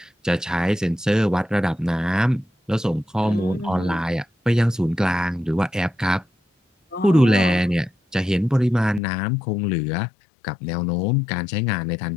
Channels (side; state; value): right; drops out; at 9.0 s